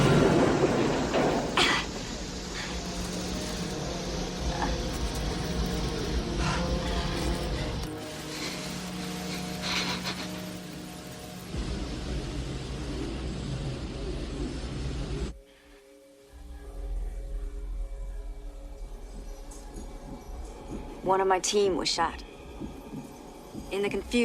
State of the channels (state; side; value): identical; both; correlation 1.00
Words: One of my team was shot. In the